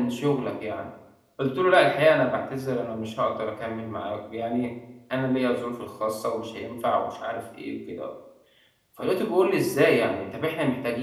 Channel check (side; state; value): both; identical; correlation 1.00